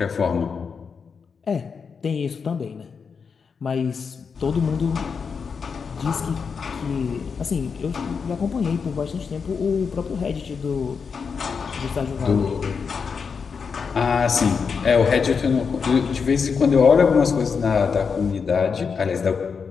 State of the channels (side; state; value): right; quieter; 5.8 dB